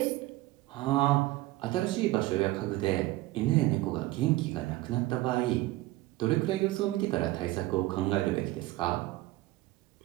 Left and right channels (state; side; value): quieter; left; 18.0 dB